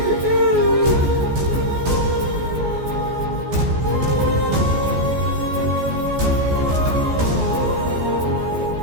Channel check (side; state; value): left; late; 14 ms